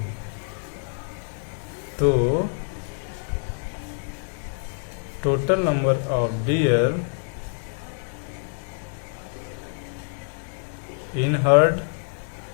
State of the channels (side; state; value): right; silent; 61 dB below the other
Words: तो total number of deer in herd